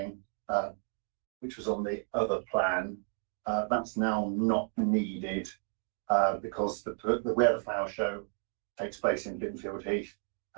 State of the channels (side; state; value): left; silent; 56 dB below the other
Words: which was on the other plan. That's now not needed because where the flower show takes place in Binfield Heath